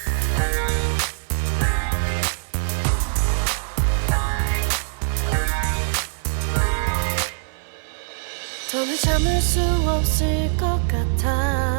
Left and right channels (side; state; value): left; silent; 56 dB below the other